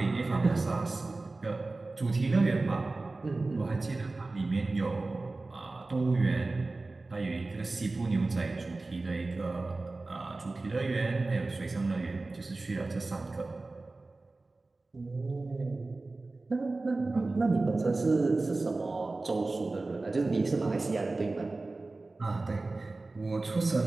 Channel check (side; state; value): left; quieter; 3.3 dB